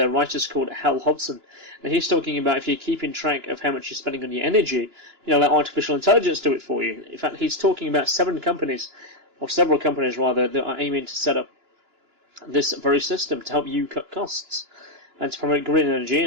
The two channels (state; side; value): late; left; 2.9 ms